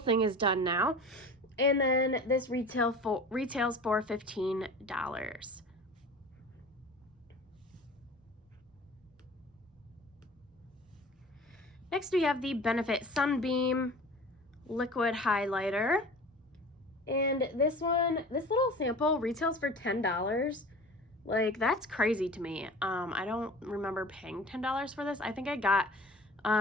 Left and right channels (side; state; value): both; normal; correlation 0.40